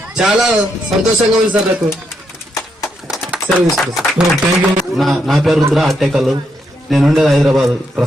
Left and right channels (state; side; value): normal; both; correlation 0.79